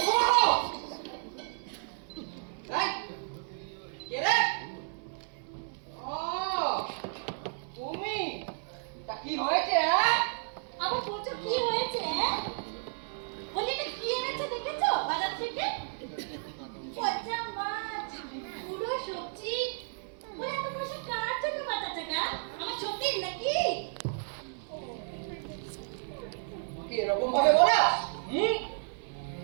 কি হয়েছে? আবার বলছো কি হয়েছে? বলি এটা কি এনেছে দেখেছো বাজার থেকে? পচা মাছ, পুরো সবজি। বলে এত পয়সা কার জন্য বাঁচাচ্ছে না? আমার সত্যি নাকি?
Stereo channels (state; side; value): silent; left; 56 dB below the other